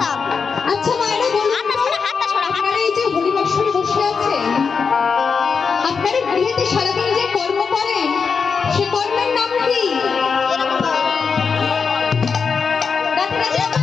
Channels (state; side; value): quieter; right; 5.6 dB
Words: আচ্ছা মায়েরা বলুন, আপনারা এই যে হরিবাসরে বসে আছেন, আপনারা গৃহেতে সারাদিন যে কর্ম করেন সে কর্মের নাম কি?